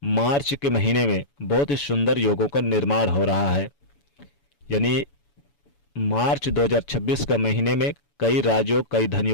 मार्च के महीने में बहुत ही सुंदर योगों का निर्माण हो रहा है। यानी मार्च 2026 का महीने में कई राजयोग, कई धन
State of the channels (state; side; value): late; right; 7.0 ms